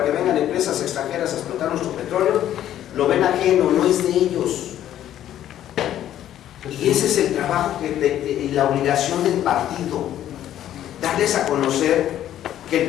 que vengan empresas extranjeras a explotar nuestro petróleo, lo ven ajeno, no es de ellos. Y ese es el trabajo y la obligación del partido, darles a conocer que el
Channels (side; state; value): right; quieter; 11.7 dB